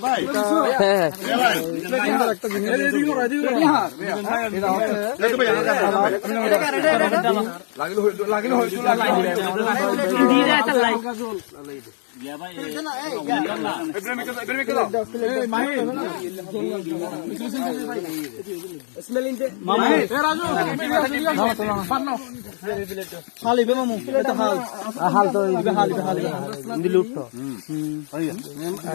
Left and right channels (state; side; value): silent; right; digital silence